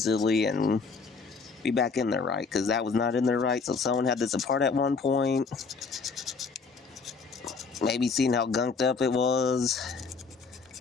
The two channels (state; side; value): quieter; right; 4.8 dB